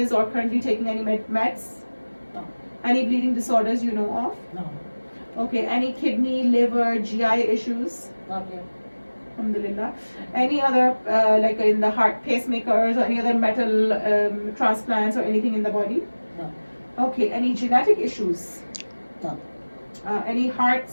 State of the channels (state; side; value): inverted; both; correlation -1.00